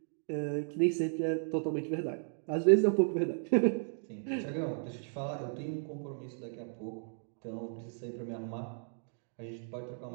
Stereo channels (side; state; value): left; silent; digital silence